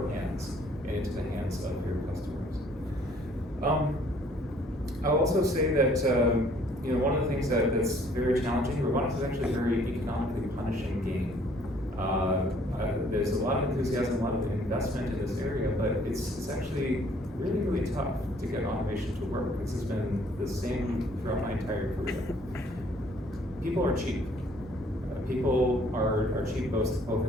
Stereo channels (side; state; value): both; normal; correlation 0.60